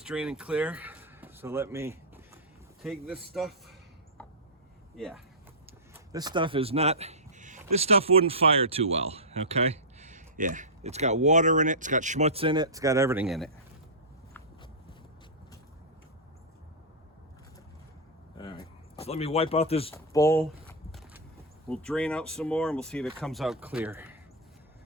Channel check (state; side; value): normal; both; correlation -0.12